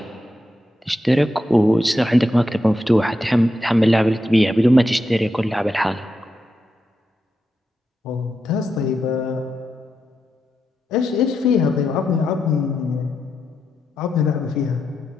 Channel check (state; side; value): normal; both; correlation 0.86